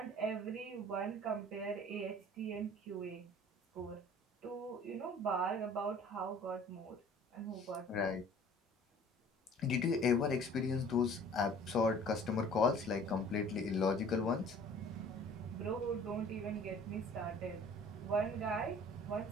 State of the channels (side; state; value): both; normal; correlation 0.49